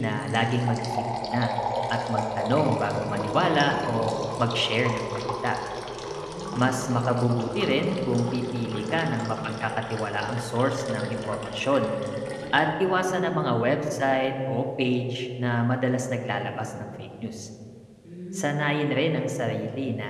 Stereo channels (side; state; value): both; identical; correlation 1.00